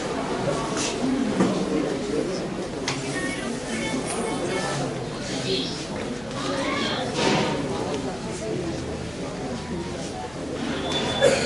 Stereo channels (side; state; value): left; noise; hum, 19 dB below the sound